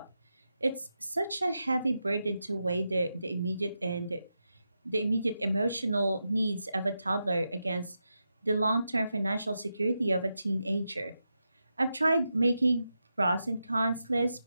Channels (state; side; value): inverted; both; correlation -0.88